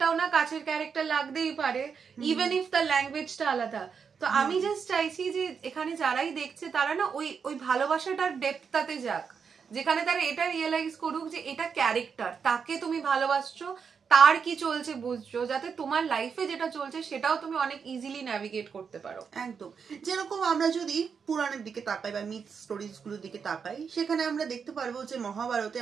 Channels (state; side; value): quieter; left; 6.3 dB